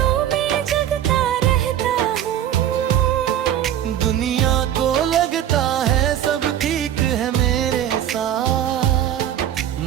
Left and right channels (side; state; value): left; quieter; 10.9 dB